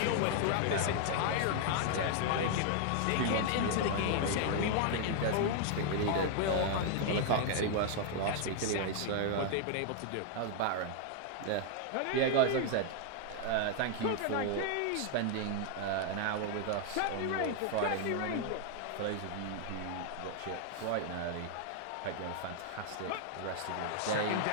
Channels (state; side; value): different; both; correlation 0.00